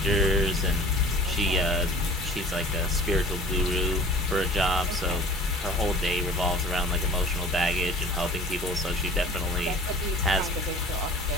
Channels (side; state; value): both; normal; correlation 0.45